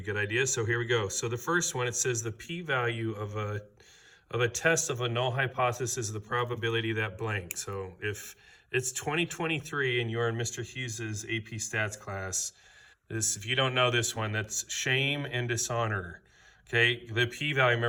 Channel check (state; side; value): identical; both; correlation 1.00